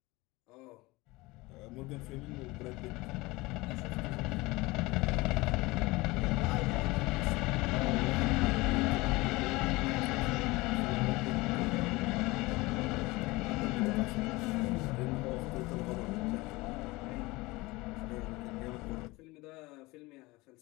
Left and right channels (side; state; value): right; quieter; 22.0 dB